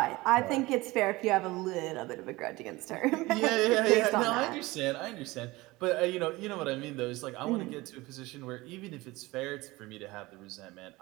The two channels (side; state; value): left; quieter; 20.9 dB